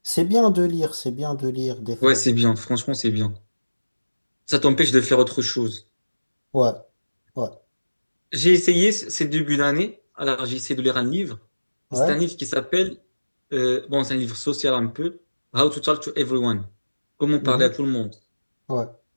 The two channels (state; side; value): inverted; both; correlation -1.00